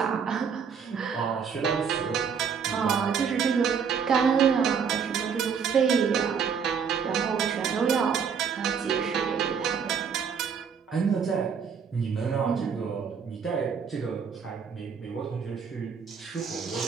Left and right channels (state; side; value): quieter; left; 6.6 dB